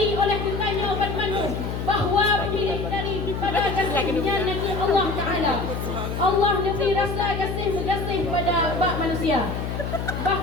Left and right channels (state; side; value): noise; left; hum, 4 dB below the sound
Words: oleh kitanya obat manu bahawa pemilik daripada kasihnya Nabi Allah Ta'ala, Allah lebih rasa kasih pada bak manusia,